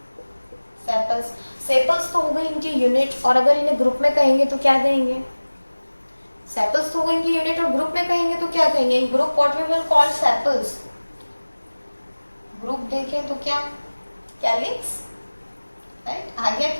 Sepals, sepals तो हो गई इनकी यूनिट, और अगर इन्हें ग्रुप में कहेंगे तो क्या कहेंगे, सेपल्स तो हो गई इनकी यूनिट, और ग्रुप में कहेंगे तो क्या कहेंगे, in group what we will call sepals. Group देखें तो क्या, कैलिक्स, राइट। आ गया,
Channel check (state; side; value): inverted; both; correlation -1.00